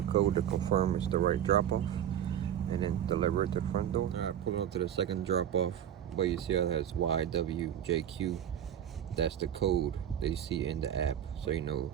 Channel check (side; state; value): left; quieter; 10.2 dB